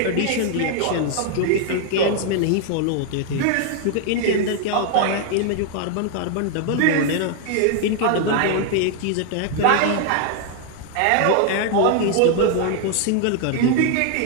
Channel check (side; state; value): both; different; correlation 0.00